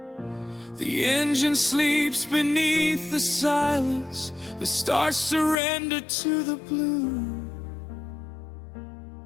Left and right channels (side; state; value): right; drops out; at 5.6 s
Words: The engine sleeps beneath the silence, the stars surrender to the blue.